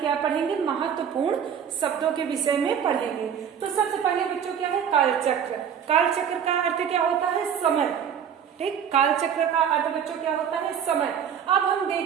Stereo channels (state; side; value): quieter; left; 8.2 dB